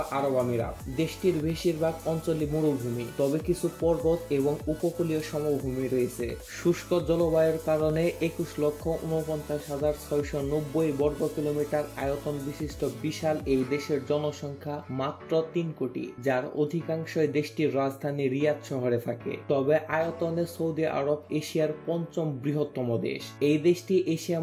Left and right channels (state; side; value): identical; both; correlation 1.00